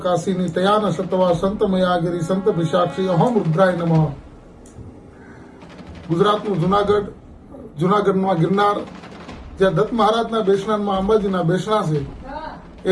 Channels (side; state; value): both; identical; correlation 1.00